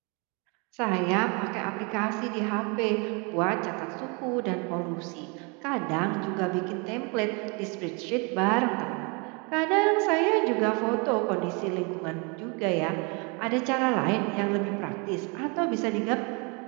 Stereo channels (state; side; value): quieter; left; 32.1 dB